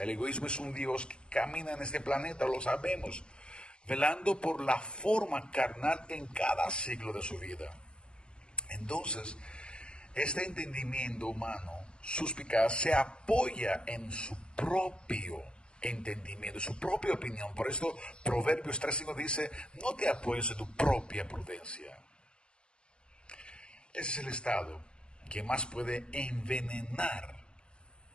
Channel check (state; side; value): late; right; 0.053 ms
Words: egoísmo es un Dios que camina en este planeta, lo sabemos, velando por la forma carnal en cada ciclo de su vida. Entonces, este entendimiento humano suspicaz se apoya en su propio entendimiento, su propia opinión. Por esto Proverbios 3:5 dice, no te apoyes en tu propia prudencia. Ese es el estado que más puede envenenar